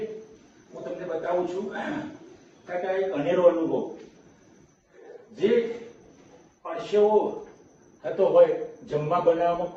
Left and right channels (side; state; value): both; identical; correlation 1.00